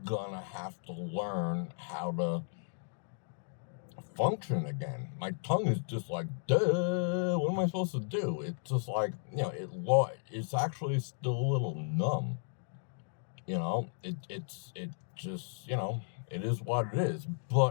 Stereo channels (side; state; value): right; silent; digital silence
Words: gonna have to learn how to function again. My tongue is just like, duh, what am I supposed to do? It's just like, it's actually still a little numb. It just, it is what it is,